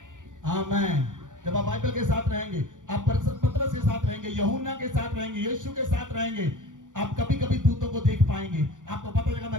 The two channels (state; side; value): late; left; 0.87 ms